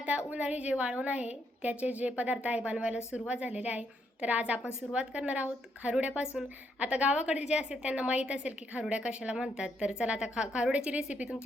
उन्हाळी जे वाळवण आहे त्याचे जे पदार्थ आहे बनवायला सुरुवात झालेली आहे। तर आज आपण सुरुवात करणार आहोत खारुड्यापासून। आता गावाकडे जे असेल त्यांना माहीत असेल की खारुड्या कशाला म्हणतात। तर चला आता खारुड्याची रेसिपी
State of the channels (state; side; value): normal; both; correlation 0.75